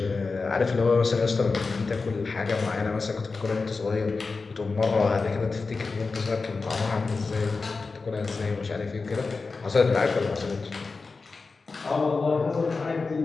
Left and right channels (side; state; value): right; quieter; 4.2 dB